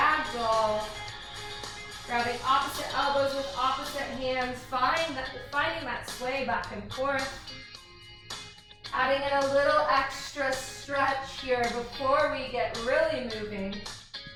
Grabbing opposite elbows with opposite hands, finding that sway back and forth. Adding in a little extra stretch here before we get really moving.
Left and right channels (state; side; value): identical; both; correlation 1.00